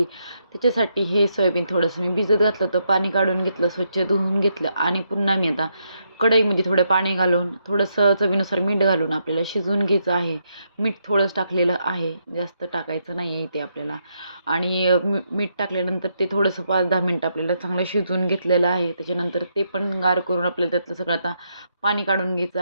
त्याच्यासाठी हे सोयाबीन थोडंसं मी भिजत घातलं होतं, पाणी काढून घेतलं, स्वच्छ धुवून घेतलं आणि पुन्हा मी आता कढईमध्ये थोडं पाणी घालून थोडंसं चवीनुसार मीठ घालून आपल्याला शिजवून घ्यायचं आहे. मीठ थोडंच टाकलेलं आहे, जास्त टाकायचं नाही आहे इथे आपल्याला. आणि मीठ टाकल्यानंतर ते थोडंसं 5-10 मिनटं आपल्याला चांगलं शिजवून घेतलेलं आहे. त्याच्यानंतर ते पण गार करून आपल्याला त्यातलं सगळं आता पाणी काढून घ्यायचं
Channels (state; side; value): inverted; both; correlation -0.79